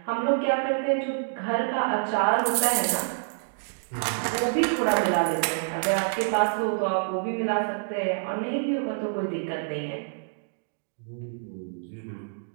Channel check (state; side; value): silent; left; digital silence